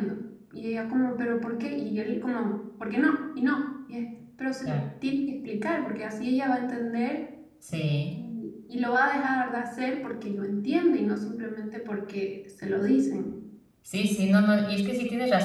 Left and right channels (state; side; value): identical; both; correlation 1.00